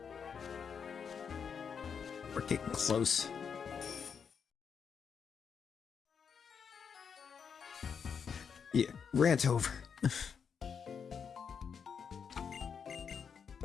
We're getting close. Yeah, rant over.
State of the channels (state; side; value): quieter; right; 6.7 dB